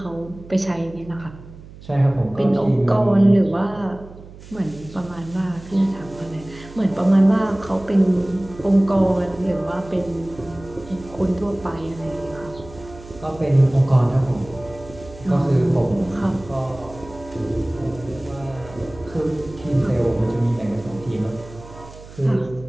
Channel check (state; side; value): noise; right; hum, 18 dB below the sound